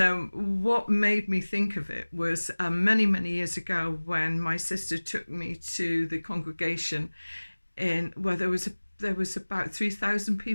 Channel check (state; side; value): inverted; both; correlation -1.00